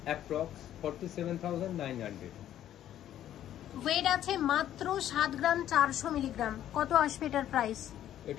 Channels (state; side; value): quieter; right; 11.6 dB